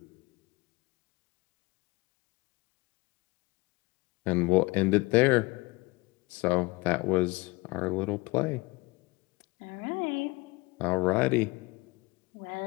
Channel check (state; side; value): quieter; right; 24.0 dB